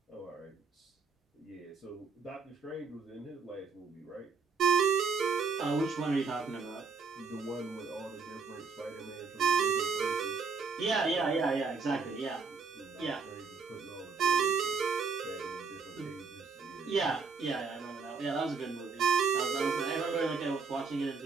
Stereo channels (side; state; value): left; quieter; 4.9 dB